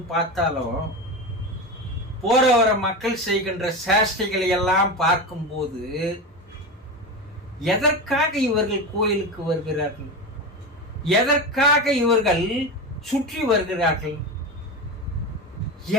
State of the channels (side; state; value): both; normal; correlation 0.21